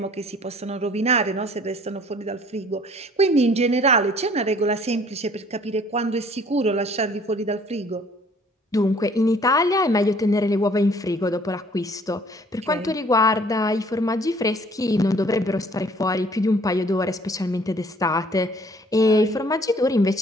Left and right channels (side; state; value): both; normal; correlation 0.56